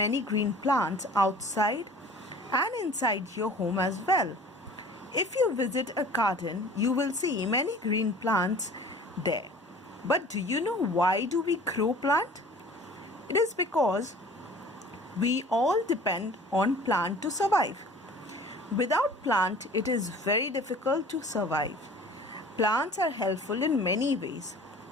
green plants outside and inside your home as well. If you visit a garden, you will see many green plants there. But do you know why do we grow plant? It is because we all depend on plant to survive. Without plant, it is very difficult to survive. Plants are helpful in many ways.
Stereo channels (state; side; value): normal; both; correlation 0.46